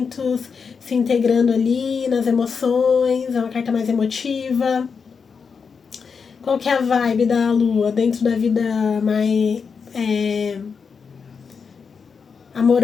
se integrando ali nas emoções, é uma carta mais emotiva. Qual que é a vibe da Lua dentro da vida mais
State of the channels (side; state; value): right; quieter; 5.7 dB